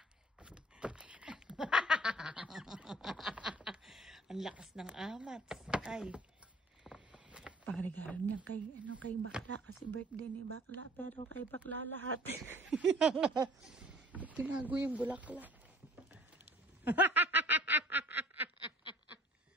Ang lakas ng amats. Ay. Pangregalo niya kay bakla kasi birthday ni bakla, pero kay bakla lahat. Tinago yung bulaklak.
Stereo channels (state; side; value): normal; both; correlation 0.51